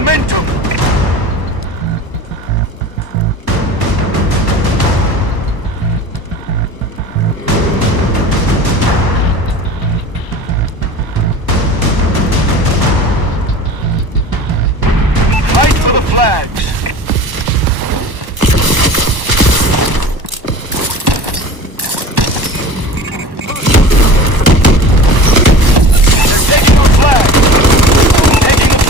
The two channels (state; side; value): late; left; 1.1 ms